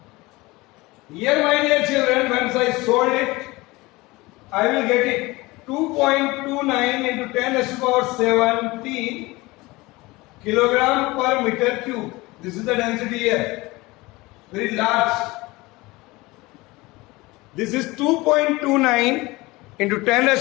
Here my dear children, once I solve it, I will get it 2.29 into 10 raised to power 17 kilogram per meter cube. This is the density here, very large. This is 2.29 into 10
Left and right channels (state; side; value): quieter; right; 21.7 dB